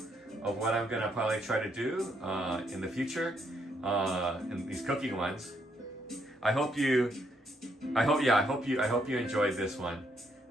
of what I'm gonna probably try to do in the future, in these cooking ones. I hope you enjoyed this one.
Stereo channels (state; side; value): normal; both; correlation 0.74